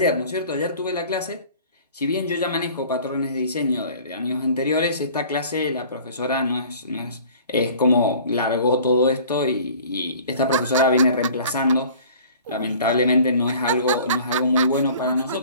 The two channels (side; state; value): both; inverted; correlation -0.48